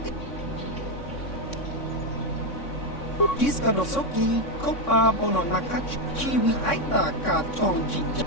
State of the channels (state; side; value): late; right; 3.6 ms